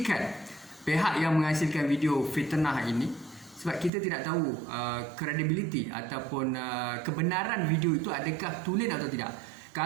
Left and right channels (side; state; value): left; drops out; at 3.9 s